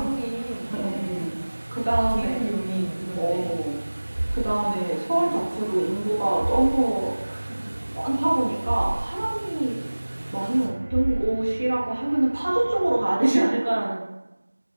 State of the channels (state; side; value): inverted; both; correlation -1.00